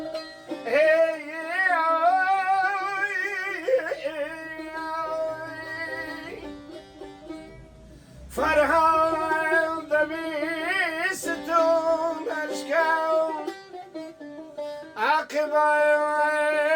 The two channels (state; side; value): identical; both; correlation 1.00